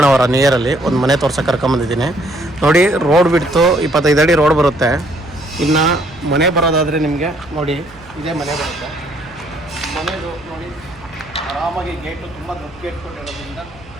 ನಿಯರಲ್ಲಿ ಒಂದು ಮನೆ ತೋರ್ಸಕ್ಕೆ ಕರ್ಕೊಂಬಂದಿದ್ದೀನಿ. ನೋಡಿ, ರೋಡ್ ಬಿಡ್ತು 25 ಅಡಿ ರೋಡ್ ಬರುತ್ತೆ. ಇನ್ನು ಮನೆ ಬರೋದಾದರೆ ನಿಮಗೆ ನೋಡಿ ಇದೇ ಮನೆ ಬರುತ್ತೆ. ಮನೆದು ನೋಡಿ ಆರಾಮಾಗಿ ಗೇಟು ತುಂಬ ದೊಡ್ಡ ಗೇಟ್ ಕೊಟ್ಟಿರೋದ್ರಿಂದ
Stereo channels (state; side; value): noise; right; hum, 24 dB below the sound